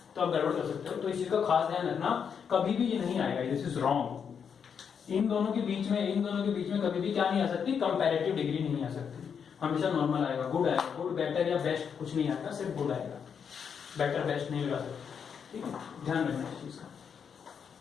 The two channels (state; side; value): quieter; right; 7.0 dB